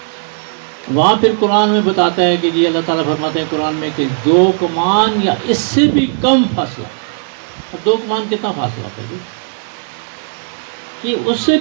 وہاں پھر قرآن میں بتاتا ہے کہ جی اللہ تعالیٰ فرماتے ہیں قرآن میں کہ 2 کمان یا اس سے بھی کم فاصلہ، اور 2 کمان کتنا فاصلہ تھا جی؟ کہ اس سے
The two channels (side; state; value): left; silent; digital silence